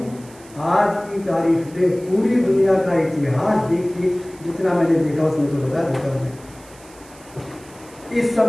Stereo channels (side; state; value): right; noise; hiss, 23 dB below the sound